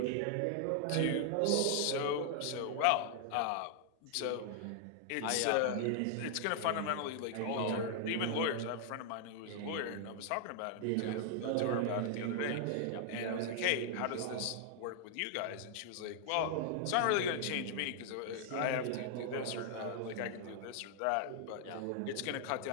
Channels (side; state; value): both; different; correlation 0.00